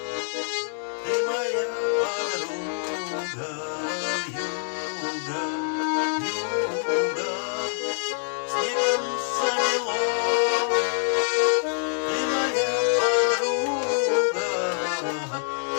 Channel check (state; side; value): silent; right; digital silence